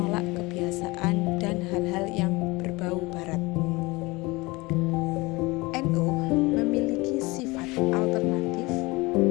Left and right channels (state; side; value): quieter; right; 23.2 dB